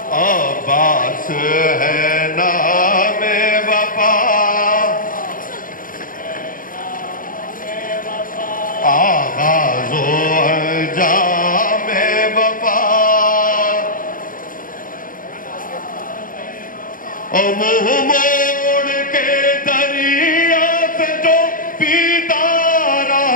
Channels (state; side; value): late; right; 0.40 ms